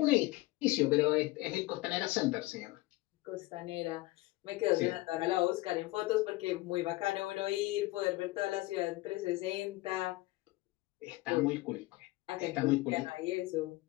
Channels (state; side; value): quieter; right; 19.9 dB